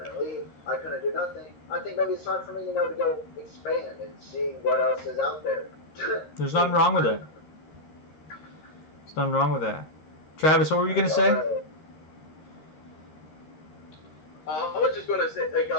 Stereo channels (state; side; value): late; right; 13 ms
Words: leave. I couldn't do nothing. I think maybe it's time for me, to go expand and see what else is out there. There's nothing wrong with it. There's nothing wrong with that. Travis, what were you going to say? I was just gonna say, like,